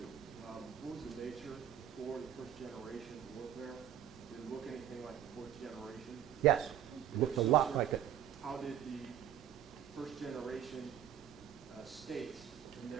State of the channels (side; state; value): left; quieter; 10.2 dB